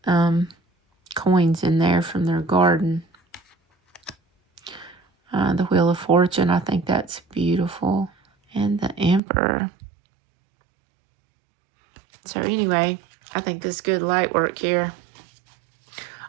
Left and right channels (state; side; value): drops out; left; at 9.2 s